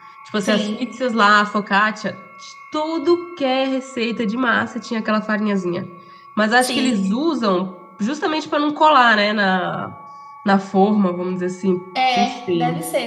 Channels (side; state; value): both; identical; correlation 1.00